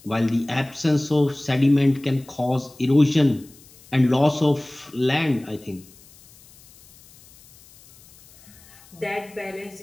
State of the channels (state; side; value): noise; left; hiss, 25 dB below the sound